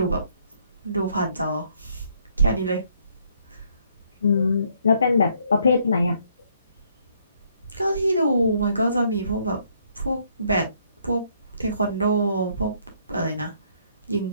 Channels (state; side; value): inverted; both; correlation -0.68